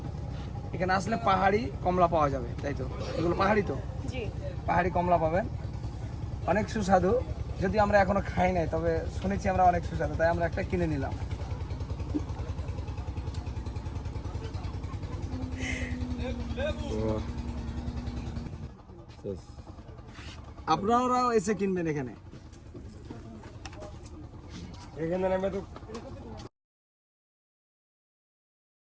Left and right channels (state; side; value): identical; both; correlation 1.00